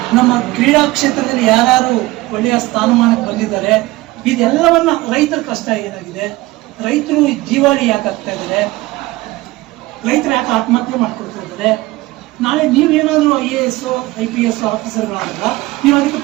ನಮ್ಮ ಕ್ರೀಡಾ ಕ್ಷೇತ್ರದಲ್ಲಿ ಯಾರ್ಯಾರು ಒಳ್ಳೆಯ ಸ್ಥಾನಮಾನಕ್ಕೆ ಬಂದಿದ್ದಾರೆ, ಇದೆಲ್ಲವನ್ನ ರೈತರ ಕಷ್ಟ ಏನಾಗಿದೆ, ರೈತರು ಜೀವಾಳಿ ಯಾಕೆ ಆಗ್ತಾ ಇದ್ದಾರೆ, ರೈತರು ಯಾಕೆ ಆತ್ಮಹತ್ಯೆ ಮಾಡ್ಕೊಳ್ತಾ ಇದ್ದಾರೆ. ನಾಳೆ ನೀವೇನಾದ್ರೂ IAS IPS ಆಫೀಸರ್ಗಳಾಗಲ್ಲ, ನೀವು ಅದಕ್ಕೆ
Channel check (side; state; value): left; quieter; 19.4 dB